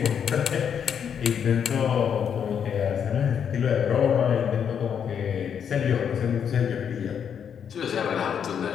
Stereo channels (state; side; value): quieter; right; 7.9 dB